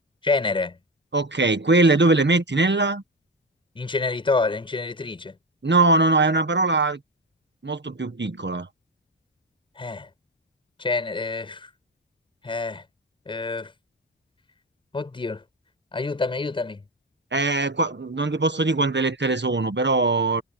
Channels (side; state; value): both; normal; correlation 0.15